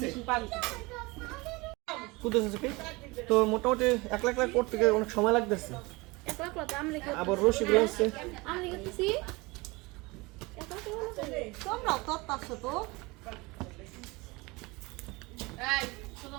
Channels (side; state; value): left; quieter; 24.3 dB